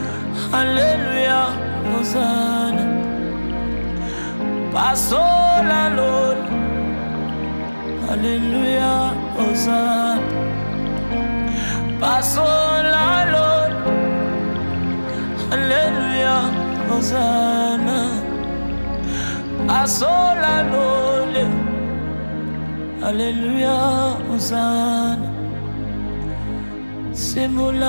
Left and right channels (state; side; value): inverted; both; correlation -1.00